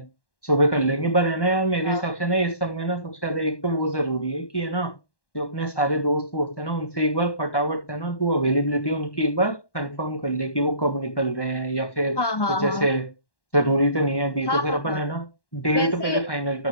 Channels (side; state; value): right; late; 1.1 ms